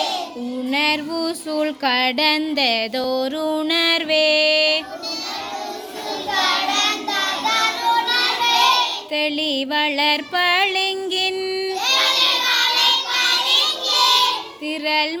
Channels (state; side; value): identical; both; correlation 1.00